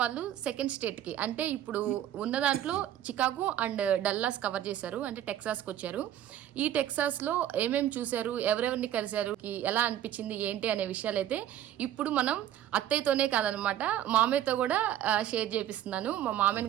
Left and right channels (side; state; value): left; quieter; 11.7 dB